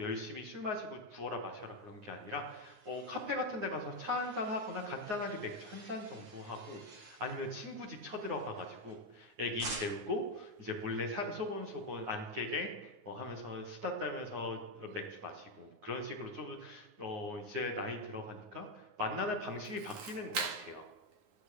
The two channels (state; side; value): late; left; 9.5 ms